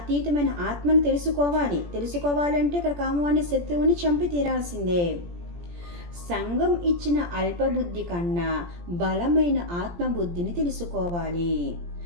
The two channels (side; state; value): left; late; 17 ms